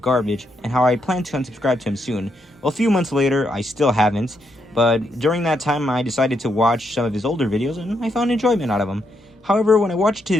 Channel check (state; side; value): normal; both; correlation 0.79